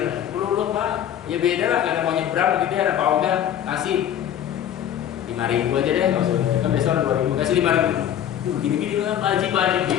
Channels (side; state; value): right; quieter; 10.3 dB